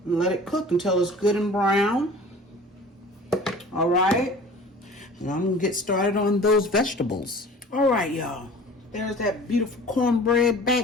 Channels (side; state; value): both; normal; correlation 0.44